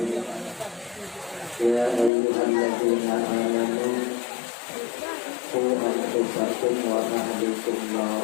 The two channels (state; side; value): drops out; right; at 2.1 s